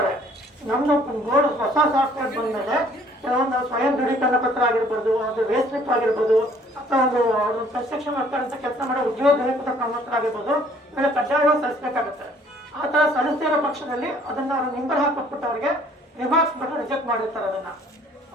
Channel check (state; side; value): normal; both; correlation 0.58